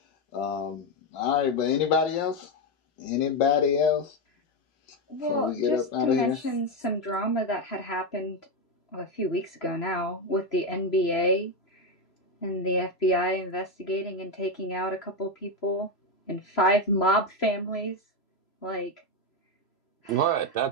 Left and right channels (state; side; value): late; right; 3.0 ms